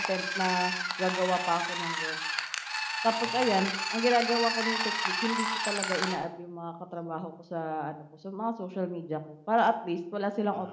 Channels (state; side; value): identical; both; correlation 1.00